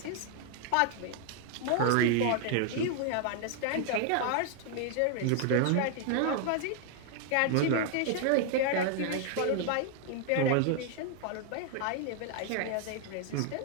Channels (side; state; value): both; different; correlation 0.00